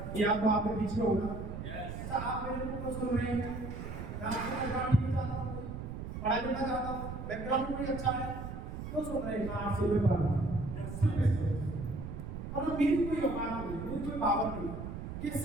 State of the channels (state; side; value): noise; right; rumble, 7 dB below the sound